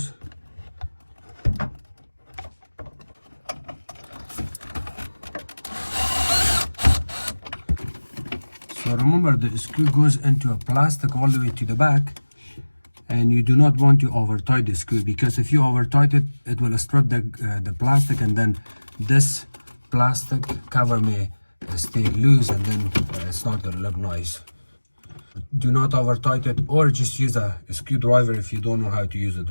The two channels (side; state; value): both; inverted; correlation -1.00